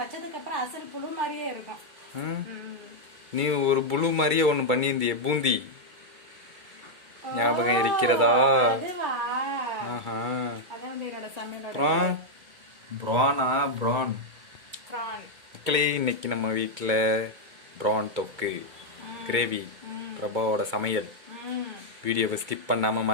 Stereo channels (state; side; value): late; left; 2.3 ms